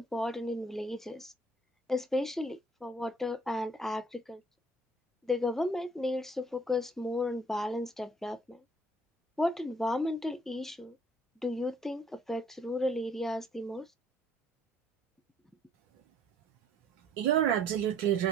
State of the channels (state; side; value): normal; both; correlation 0.59